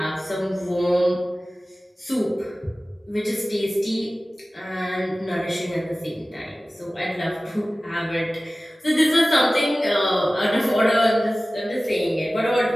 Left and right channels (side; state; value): both; normal; correlation 0.97